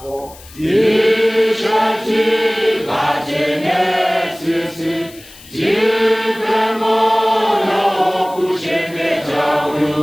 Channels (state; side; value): noise; left; hiss, 21 dB below the sound